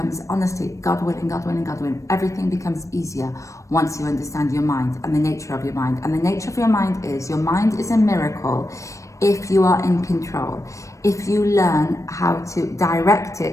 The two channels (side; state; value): right; late; 0.15 ms